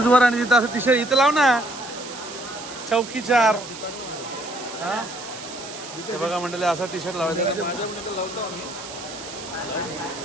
आणि तिथं असं टी शर्ट इथं लाव ना चौकी 4. हा हे बघा मंडळी असा टी शर्ट लावायचा.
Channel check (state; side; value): noise; right; hiss, 12 dB below the sound